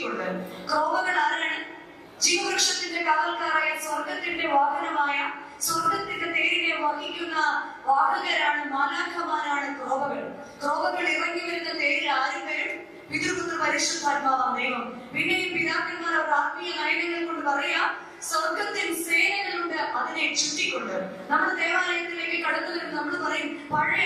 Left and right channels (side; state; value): both; identical; correlation 1.00